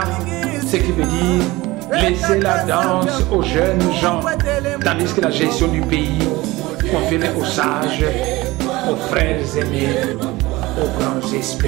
ce qui veut dire laisser la danse aux jeunes gens, tandis que la gestion du pays confiée aux sages, aux frères aimés, aux grands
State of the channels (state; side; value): quieter; left; 20.2 dB